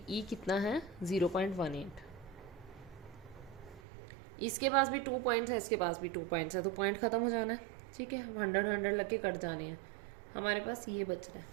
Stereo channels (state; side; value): drops out; left; at 3.8 s